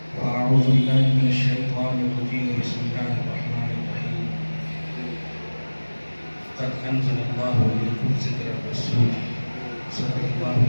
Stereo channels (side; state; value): both; inverted; correlation -1.00